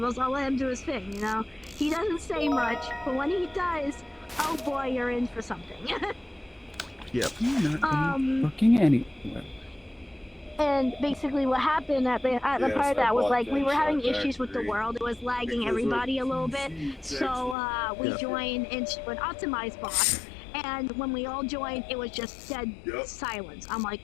I'll let him do his thing, you know? He doesn't say much, but when he does, oh boy, you're in for something. Yep. You're not fucking anywhere. And basically what happened at the part of that was like we were having issues with the world. It was lagging everybody a little bit. So we joined into an optimized box. And when we all joined, it was just dead silence. I'm like,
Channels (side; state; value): right; drops out; at 17.6 s